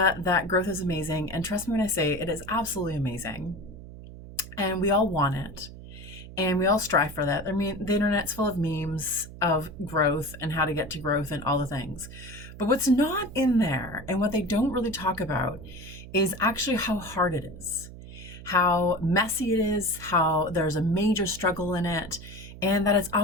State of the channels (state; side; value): noise; right; hum, 15 dB below the sound